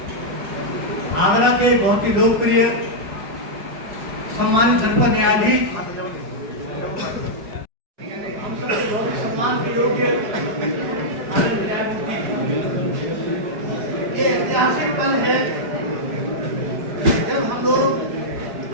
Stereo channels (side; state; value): left; late; 4.9 ms